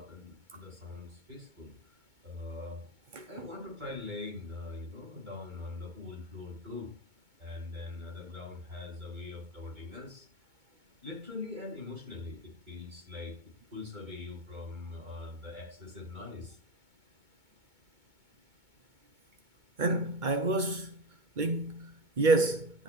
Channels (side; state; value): left; late; 2.2 ms